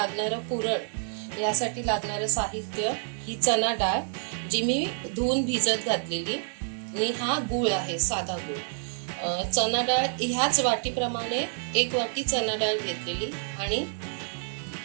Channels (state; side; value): silent; left; digital silence